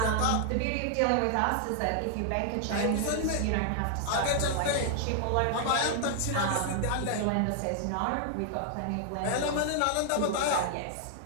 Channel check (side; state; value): both; different; correlation 0.00